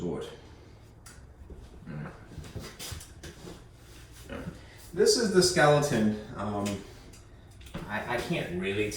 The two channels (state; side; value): identical; both; correlation 1.00